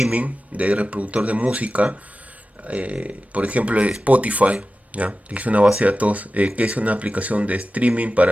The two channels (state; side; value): normal; both; correlation 0.94